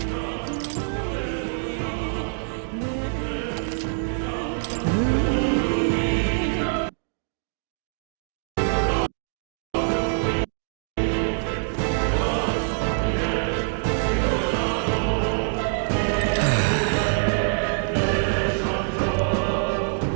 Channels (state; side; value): silent; left; digital silence